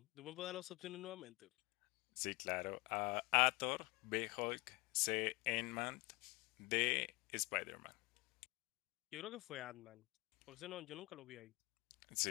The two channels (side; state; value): right; quieter; 23.7 dB